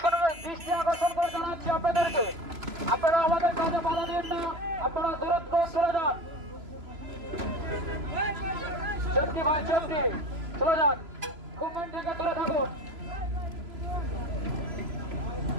আকর্ষণ করে জানাচ্ছি আপনাদেরকে, আপনারা আমাদের কাজে বাধা দিন না, আপনারা দূরত্ব চলে যান। সেফটি ভাই, সেফটি, চলে যান, গভর্নমেন্ট থেকে দূরে থাকুন।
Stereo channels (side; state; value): left; late; 3.0 ms